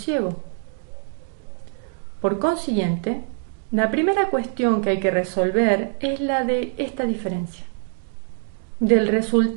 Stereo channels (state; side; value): silent; left; 63 dB below the other